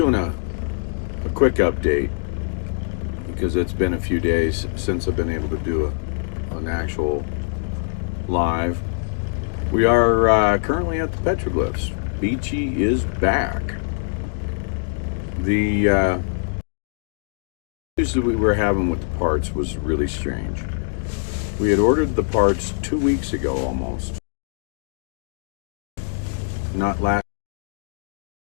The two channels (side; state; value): right; silent; digital silence